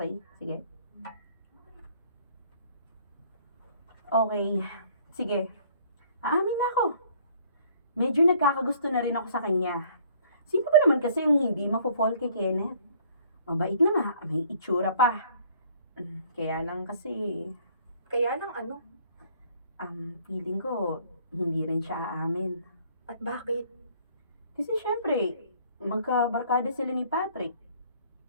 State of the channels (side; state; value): both; inverted; correlation -0.58